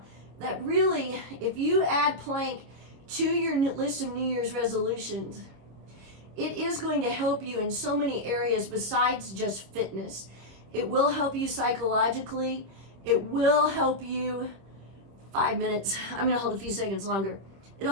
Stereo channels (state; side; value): late; left; 26 ms